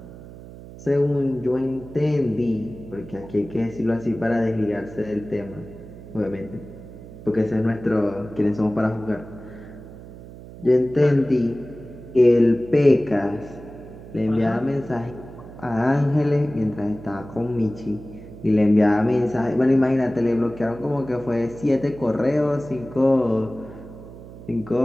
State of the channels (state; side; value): noise; right; hum, 16 dB below the sound